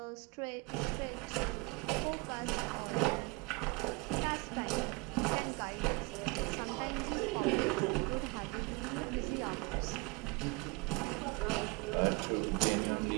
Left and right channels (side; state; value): left; quieter; 25.0 dB